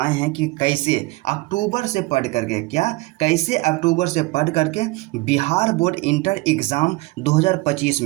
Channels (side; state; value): left; quieter; 22.5 dB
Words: हैं कि कैसे अक्टूबर से पढ़ करके क्या, कैसे अक्टूबर से पढ़ करके बिहार बोर्ड इंटर एग्ज़ाम 2025